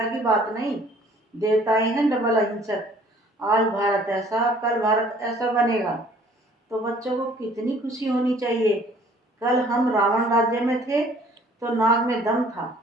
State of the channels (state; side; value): normal; both; correlation 0.55